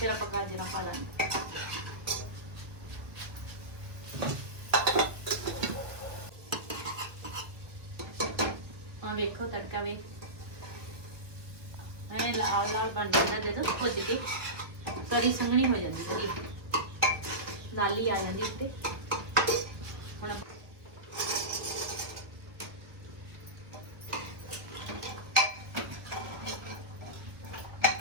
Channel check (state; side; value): late; left; 1.3 ms